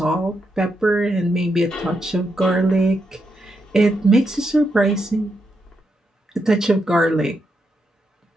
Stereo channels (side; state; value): both; normal; correlation 0.82